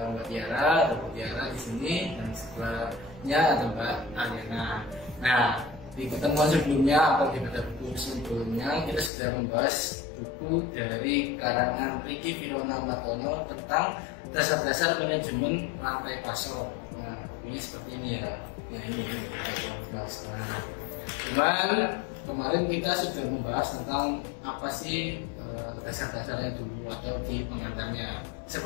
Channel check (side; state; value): right; drops out; at 9.1 s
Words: Mbak Tiara, ada Bu Tiara di sini, dan sebelahnya ada Mbak Ariana. Nah, di pertemuan sebelumnya atau di Bedah Buku sebelumnya kita sudah membahas buku dari karangan Ricky Firona Martono tentang dasar-dasar manajemen rantai pasok. Nah, ini seperti ini ya. Nah, ini cuman kemarin kita sudah membahas tentang apa sih dasar-dasarnya dulu atau di pengantarnya.